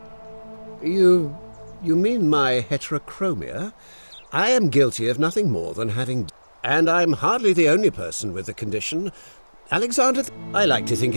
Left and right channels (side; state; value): both; inverted; correlation -1.00